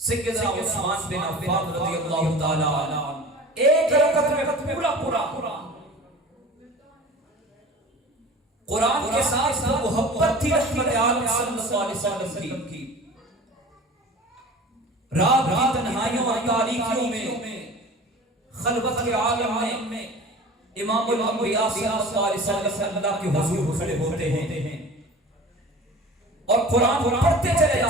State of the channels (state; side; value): normal; both; correlation 0.39